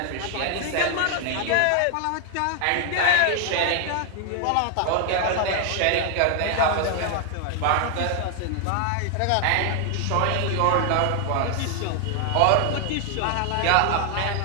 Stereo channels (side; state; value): both; different; correlation 0.00